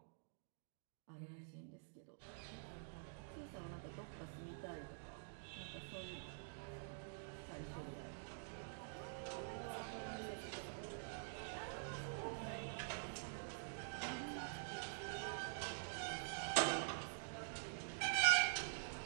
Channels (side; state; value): left; silent; digital silence